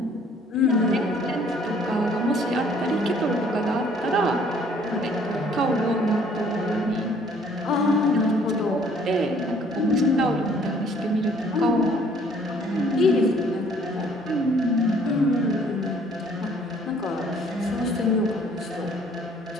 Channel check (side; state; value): both; normal; correlation 0.59